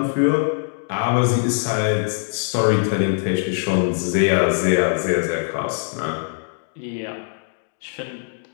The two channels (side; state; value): right; silent; digital silence